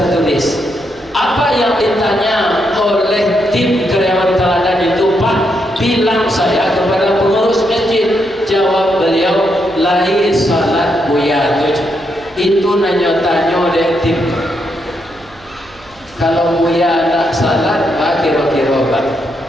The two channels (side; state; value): right; noise; hum, 25 dB below the sound